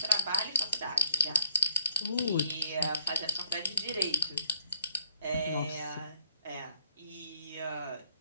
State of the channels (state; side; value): inverted; both; correlation -0.68